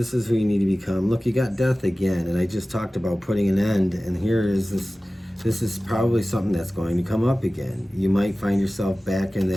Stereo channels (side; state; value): both; normal; correlation 0.97